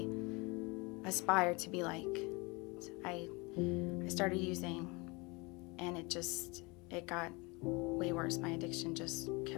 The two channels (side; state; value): right; quieter; 27.0 dB